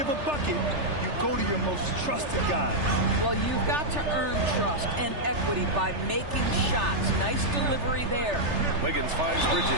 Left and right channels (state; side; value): late; left; 3.3 ms